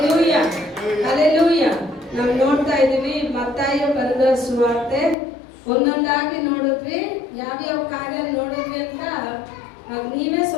hallelujah. ನಾವು ನೋಡ್ತಾ ಇದ್ದೀವಿ ಮತ್ತಾಯ ಬರೆದ ಸುವಾರ್ತೆ ಒಂದೊಂದಾಗಿ ನೋಡಿದ್ವಿ. ಯಾವ್ಯಾವ ಕಾರ್ಯ ನೋಡಿದ್ವಿ ಅಂತ ನೀವೇ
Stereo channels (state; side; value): drops out; right; at 5.2 s